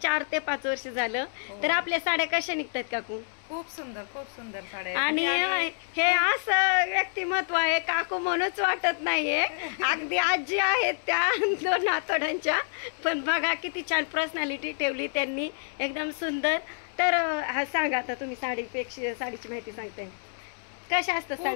ते 5 वर्ष झालं. तर आपल्या साड्या कशा निघतात काकू? खूप सुंदर साड्या. आणि हे असं व्यक्तिमत्व आहे काकू म्हणूच वाटत नाहीये, अगदी आजी आहेत त्या 2 आतोड्यांच्या, पण बघा किती छान पर्सनॅलिटी ठेवली त्यांनी, एकदम सुंदर. तर हा सांगा आता तुम्ही साडीपेक्षा, साडीची माहिती सांगताय कशा असतात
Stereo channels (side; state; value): right; silent; 59 dB below the other